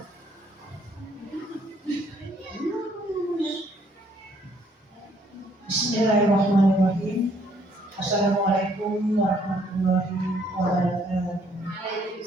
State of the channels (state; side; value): normal; both; correlation 0.66